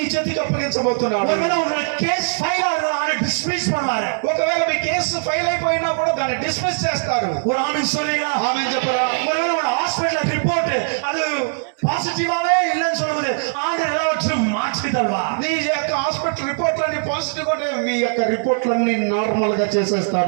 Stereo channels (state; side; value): silent; left; digital silence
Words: చేతికి అప్పగించబోతున్నాడు. ஒருவேளை உங்க கேஸ் ஃபைல் ஆகுறத டிஸ்மிஸ் பண்ணுவாரு. ఒకవేళ మీ కేసు ఫైల్ అయిపోయినా కూడా దాన్ని డిస్మిస్ చేస్తారు. ஒரு ஆமென் சொல்றீங்களா? ఆమేన్ చెప్పరా. ஒருவேளை உங்க ஹாஸ்பிடல் ரிப்போர்ட் அது பாசிட்டிவாவே இல்லைன்னு சொல்லும்போது ஆண்டவர் எல்லாவற்றையும் மாற்றி தருவார். నీ యొక్క హాస్పిటల్ రిపోర్ట్లన్నీ పాజిటివ్ ఉంటే మీ యొక్క రిపోర్ట్లన్నీ నార్మల్ గా